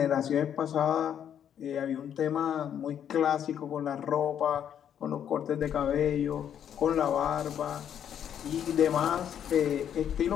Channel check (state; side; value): quieter; right; 9.2 dB